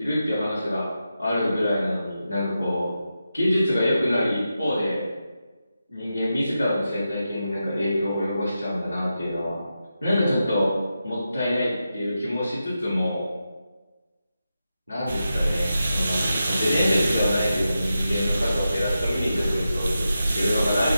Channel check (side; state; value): both; inverted; correlation -0.89